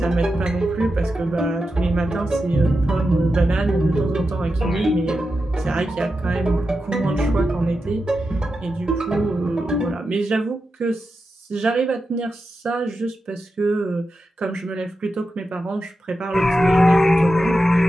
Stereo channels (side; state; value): both; normal; correlation 0.90